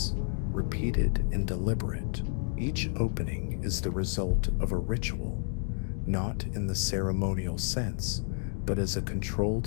repeated, and deliberate. Each opening is the result of a ritual, not in the ceremonial sense, but as a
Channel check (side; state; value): right; silent; 57 dB below the other